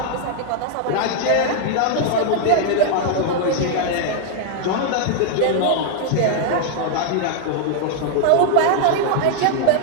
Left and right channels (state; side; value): different; both; correlation 0.00